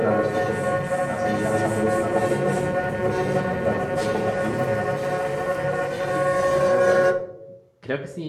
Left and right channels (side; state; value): both; identical; correlation 1.00